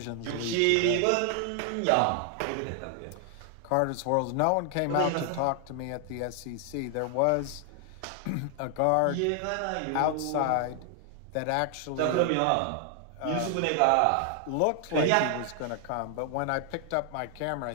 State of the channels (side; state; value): both; different; correlation 0.00